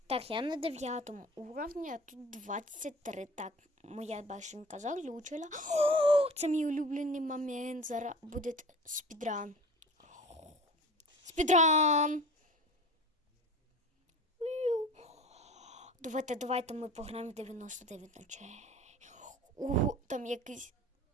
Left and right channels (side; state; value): both; normal; correlation 0.39